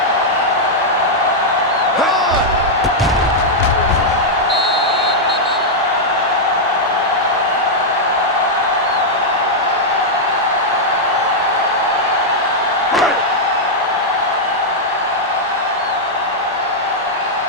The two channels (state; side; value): normal; both; correlation -0.05